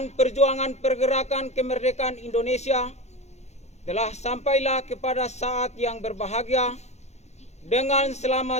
perjuangan pergerakan kemerdekaan Indonesia telah sampailah kepada saat yang berbahagia dengan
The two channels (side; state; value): right; late; 0.32 ms